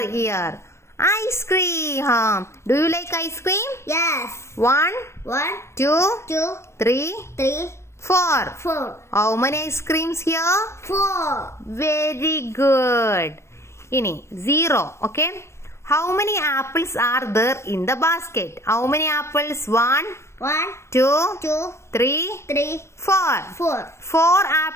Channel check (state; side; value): late; right; 0.13 ms